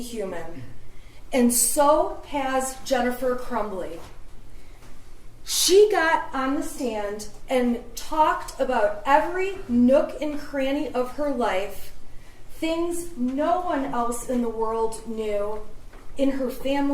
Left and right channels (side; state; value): both; identical; correlation 1.00